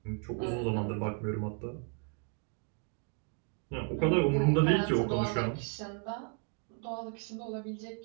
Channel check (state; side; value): quieter; left; 37.0 dB